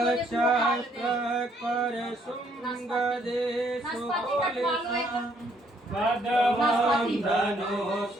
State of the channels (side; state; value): both; normal; correlation 0.68